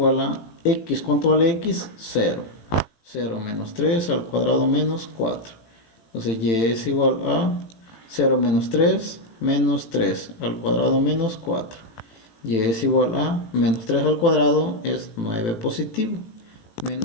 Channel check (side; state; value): right; late; 18 ms